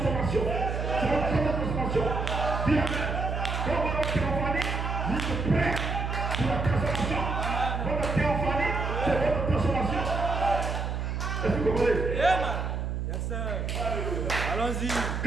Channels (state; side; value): noise; right; hum, 2 dB below the sound